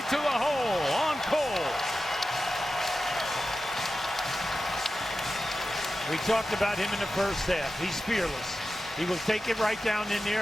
to the hole on Cole. We talked about him in the first half. He's fearless. He will take it right down in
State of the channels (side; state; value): both; normal; correlation 0.93